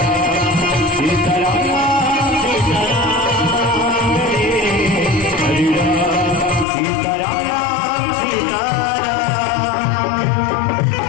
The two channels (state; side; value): drops out; right; at 6.7 s